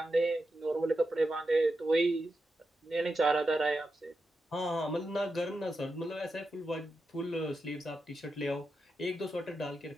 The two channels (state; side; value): normal; both; correlation 0.88